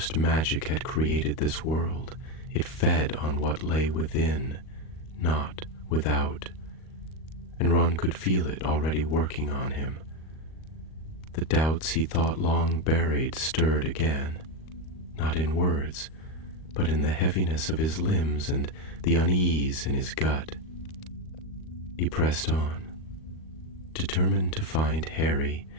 magic had created this world, it fed on what lay within, not without. And Ron could feel it already working on him. The doubts he thought long buried stirred again, not in words, but in the heaviness of his limbs and the unease in his gut. He pressed on, determined to find Harry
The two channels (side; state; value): right; late; 38 ms